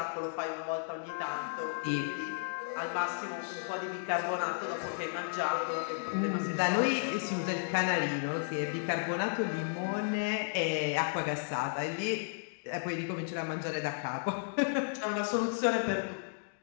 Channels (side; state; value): right; silent; digital silence